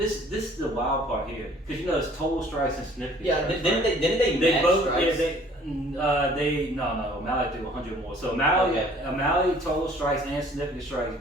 is the wild part here because you know it's total strikes and significant. Yeah, strikes, didn't right? they They match both, strikes? no, O'Malley threw 100 more. So O'Malley total strikes and significant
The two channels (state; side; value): normal; both; correlation 0.55